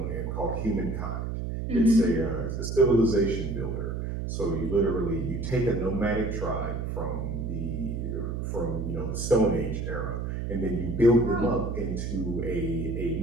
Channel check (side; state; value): right; noise; hum, 3 dB below the sound